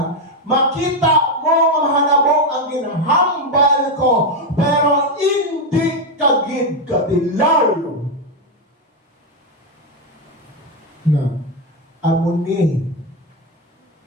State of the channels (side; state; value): both; normal; correlation 0.07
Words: Makita mo ang hanabong ang ginahambal ko, pero hindi kagid kadilaw. Na, amuni